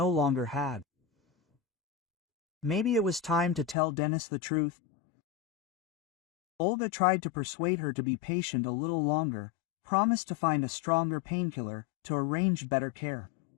longer had. Maybe it was time to tell Dennis the truth. Olga tried to persuade her to be patient a little longer, promised to find a stronger painkiller, to arrange better care.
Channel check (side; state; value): right; drops out; at 3.8 s